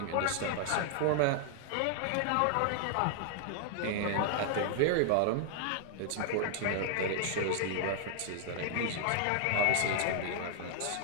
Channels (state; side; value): different; both; correlation 0.00